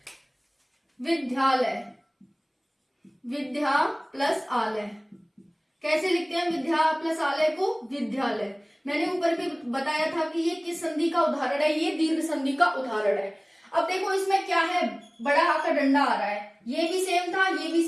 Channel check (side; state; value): both; identical; correlation 1.00